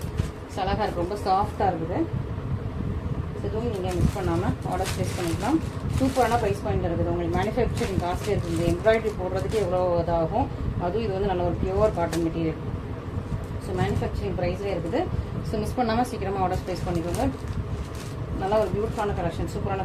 ஸோ அழகாக இருக்குது, ரொம்ப சாஃப்டாக இருக்குது. இதுவும் நீங்கள் மிஸ் பண்ணாமல் ஆர்டர் ப்ளேஸ் பண்ணிக்கலாம். சூப்பரான ப்ரைஸ் பாயிண்ட் இருக்குது. உங்களுக்கு மேனுஃபேக்சரிங் காஸ்ட்லி இருக்குது. இந்த எம்ப்ராய்டரி போடுறதுக்கு எவ்வளோ இதாகும். அதுவும் இது வந்து நல்ல ஒரு pure cotton material. So manufacturing ப்ரைஸ்லேயே இருக்குது. ஸோ மிஸ் பண்ணாமல் சீக்கிரமாக ஆர்டர் ப்ளேஸ் பண்ணிக்கோங்க. நல்லா ஒரு பியூட்டிஃபுல்லான கலெக்ஷன், சூப்பரான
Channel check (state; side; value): identical; both; correlation 1.00